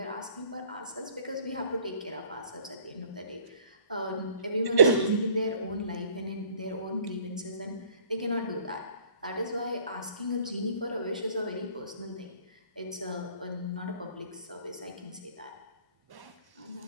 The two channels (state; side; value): inverted; both; correlation -0.55